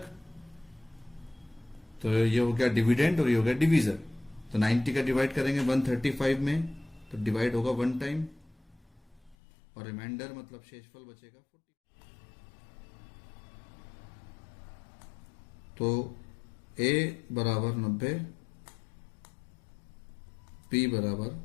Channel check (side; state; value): right; drops out; at 9.3 s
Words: तो ये हो गया डिविडेंड और ये हो गया डिवीजर। तो 90 का डिवाइड करेंगे 135 में तो डिवाइड होगा 1 टाइम, और रिमाइंडर मतलब शेषफल बचेगा 40। तो a बराबर 90, b बराबर